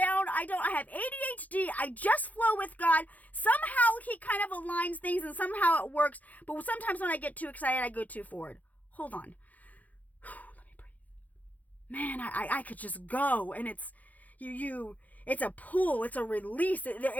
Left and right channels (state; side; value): late; right; 0.078 ms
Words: I have ADHD. I just flow with God. Somehow he kind of aligns things and somehow it works. But sometimes when I get too excited, I go too forward. Hold on. Let me breathe. Man, I could just go, and it's it's a pull, it's a release,